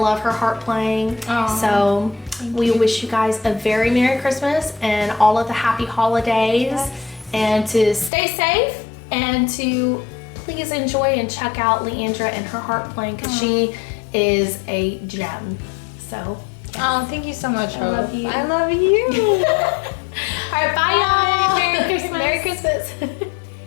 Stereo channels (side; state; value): right; drops out; at 8.1 s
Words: her harp playing. Aw. So we wish you guys a very Merry Christmas and all of the happy holidays. Yes. And to stay safe and to please enjoy and check out Leandra and her harp playing because she is a gem. So, Oh, thank you so much, Hope. I love you. I love you. All right, bye, y'all. Merry Christmas. Merry Christmas.